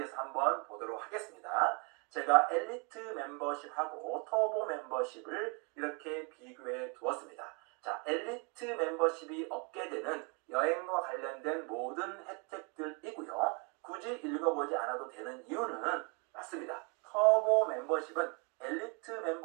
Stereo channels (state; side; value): quieter; left; 33.3 dB